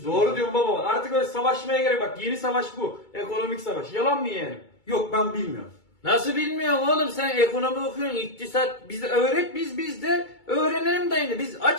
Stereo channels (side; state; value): right; late; 2.3 ms